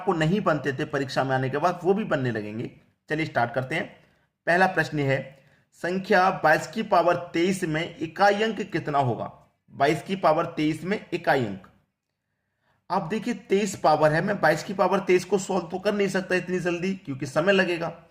नहीं बनते थे परीक्षा में आने के बाद वो भी बनने लगेंगे। चलिए स्टार्ट करते हैं। पहला प्रश्न है, संख्या 22 की पावर 23 में इकाई अंक कितना होगा? 22 की पावर 23 में इकाई अंक। आप देखिए 23 पावर है, मैं 22 की पावर 23 को सॉल्व तो कर नहीं सकता इतनी जल्दी क्योंकि समय लगेगा,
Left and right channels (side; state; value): both; identical; correlation 1.00